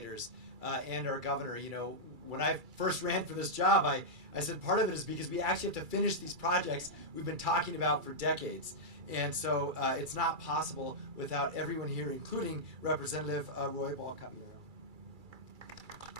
and our governor, you know, when I first ran for this job, I said part of it is because we actually have to finish these projects we've been talking about for decades. And so it's not possible without everyone here, including Representative Roy Ball-Caballero.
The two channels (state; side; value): late; left; 2.3 ms